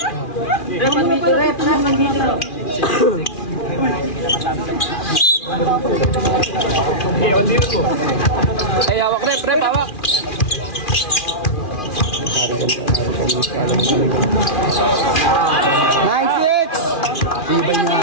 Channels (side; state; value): right; late; 2.4 ms